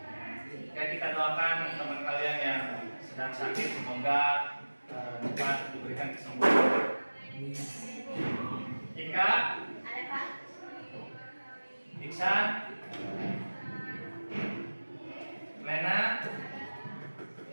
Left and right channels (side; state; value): both; inverted; correlation -1.00